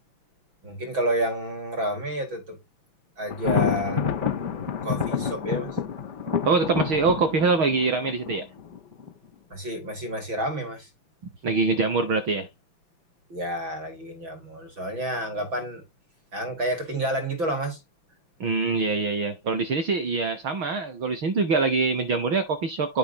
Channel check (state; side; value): late; left; 6.1 ms